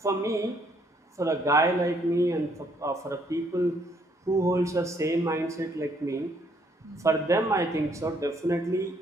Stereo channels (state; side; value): normal; both; correlation 0.68